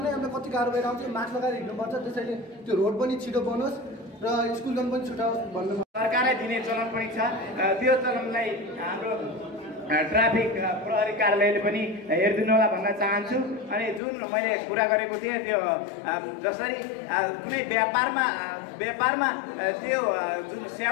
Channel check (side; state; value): right; drops out; at 14.0 s